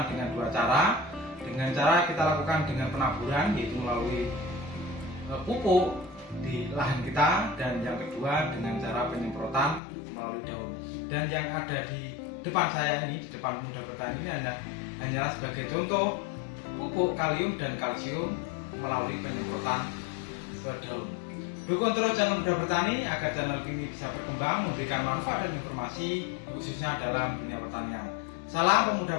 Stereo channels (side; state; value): right; drops out; at 9.8 s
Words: dengan dua cara. Dengan cara kita lakukan dengan penaburan, yaitu melalui pupuk di lahan kita, dan yang kedua dengan cara penyemprotan melalui daun. Dan yang ada di depan saya ini, di depan Muda Bertani ini hanyalah sebagai contoh pupuk kalium dan kalsium melalui penyemprotan ke daun. Dukung terus channel Muda Bertani agar channel ini bisa berkembang, memberikan manfaat dan informasi khususnya dalam dunia pertanian. Salam